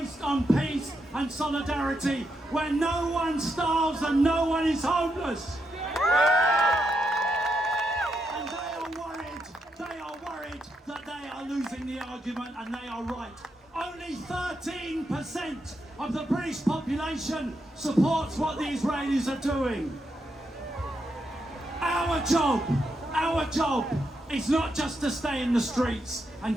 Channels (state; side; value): normal; both; correlation 0.82